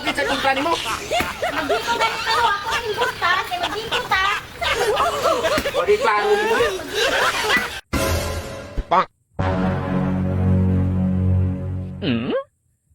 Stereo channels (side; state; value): both; identical; correlation 1.00